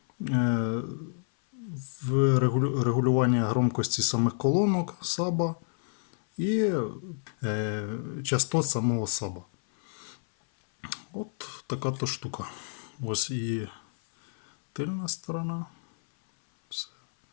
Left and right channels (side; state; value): right; silent; 59 dB below the other